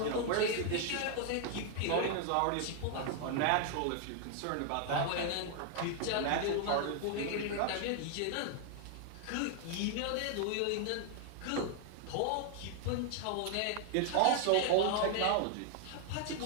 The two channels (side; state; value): both; different; correlation 0.00